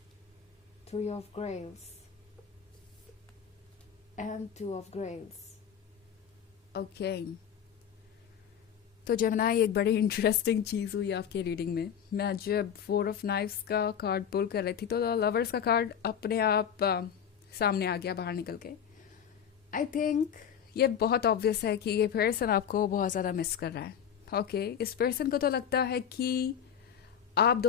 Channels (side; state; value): right; quieter; 8.5 dB